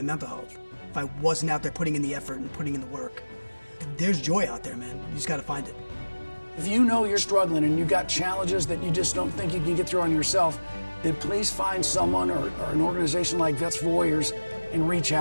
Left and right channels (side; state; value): both; inverted; correlation -1.00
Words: mental health. If I wasn't out there putting in the effort and putting in the work. There's joy out there, man. You just got to find it. If you know you're struggling and you've got challenges that you just don't think you can get through on yourself, then please find someone or an organization like Vets for Warriors and reach